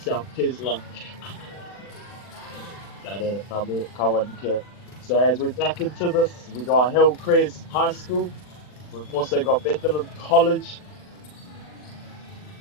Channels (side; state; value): right; late; 40 ms